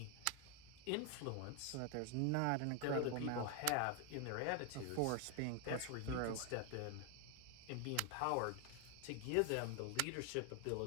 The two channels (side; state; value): both; different; correlation 0.00